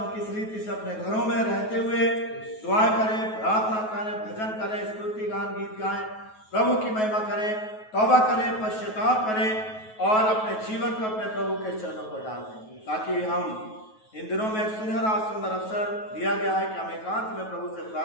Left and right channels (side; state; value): right; late; 9.3 ms